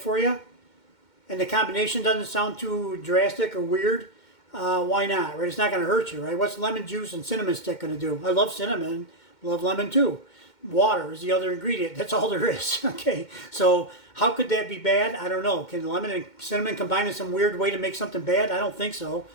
you, and the combination doesn't sound too drastic or weird, why not, right? It's not going to hurt you, right? What's lemon juice and cinnamon stick going to do? I love cinnamon, love lemon too. Water is the other ingredient. That's all there is, okay? So how could that be bad? I don't know. Can lemon and cinnamon combine in some weird way to make something bad? I don't think so.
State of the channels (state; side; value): late; right; 2.2 ms